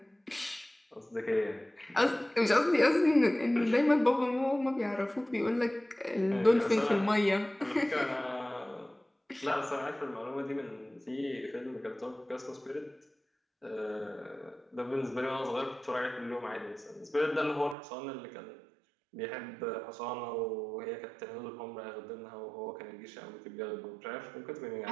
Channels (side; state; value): left; drops out; at 17.8 s